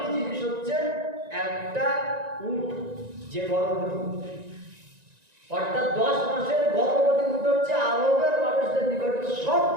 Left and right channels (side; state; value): left; late; 1.9 ms